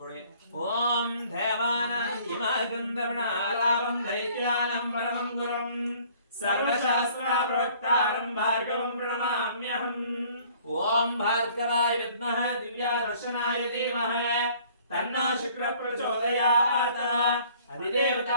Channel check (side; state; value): both; inverted; correlation -0.56